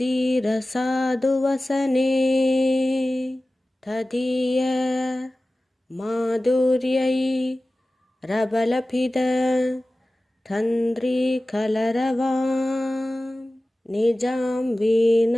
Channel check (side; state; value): both; normal; correlation 0.96